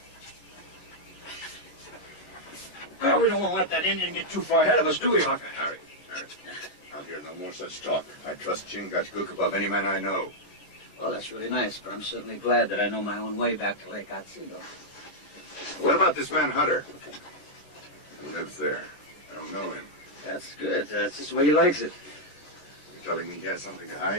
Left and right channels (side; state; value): right; late; 14 ms